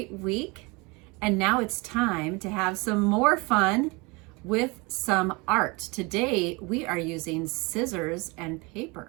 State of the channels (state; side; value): quieter; left; 27.0 dB